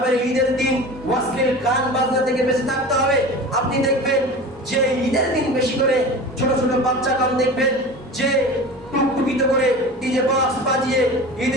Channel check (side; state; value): both; normal; correlation 0.34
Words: দিন ওয়াসলিল গান বাজনা থেকে বেঁচে থাকতে হবে। আপনি দেখবেন যে ঈদের দিন বেশি করে ছোট ছোট বাচ্চাগণ দেখবেন যে টুকটুকিত করে ডিজে বক্স বাজিয়ে